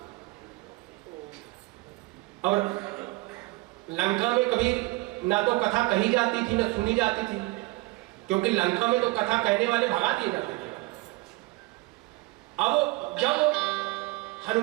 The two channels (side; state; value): left; quieter; 22.9 dB